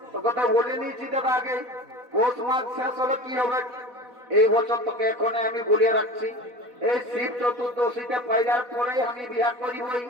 তো কথা বলে নিয়েছি দাদা আগে। পৌষ মাস শেষ হলে কি হবে? এই বছর তোকে এখন আমি বলিয়ে রাখছি, এই শিব চতুর্দশীতে পাইলার পরেই আমি বিয়া করিবই।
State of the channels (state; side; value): late; left; 4.1 ms